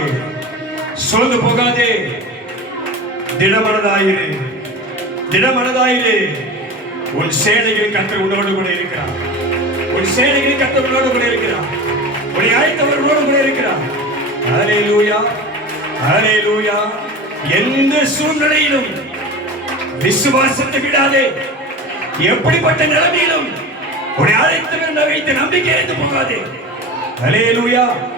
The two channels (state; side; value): normal; both; correlation 0.31